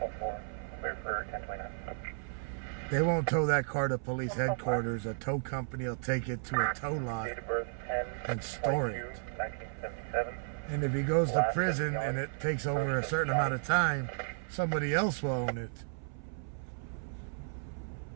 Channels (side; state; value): left; silent; 55 dB below the other